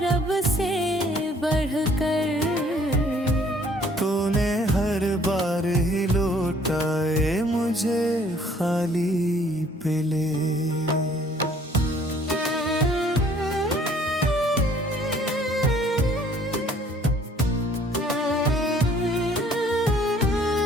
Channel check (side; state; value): both; normal; correlation 0.58